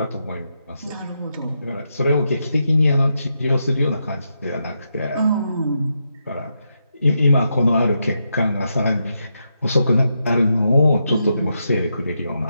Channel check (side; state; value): both; inverted; correlation -0.83